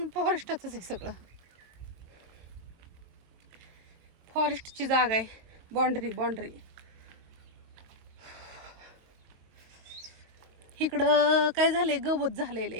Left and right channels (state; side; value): late; left; 23 ms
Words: फॉरेस्टच आहे सगळं. फॉरेस्टची जागा आहे. बाउंड्री इकडं काय झालंय गवत झालेलं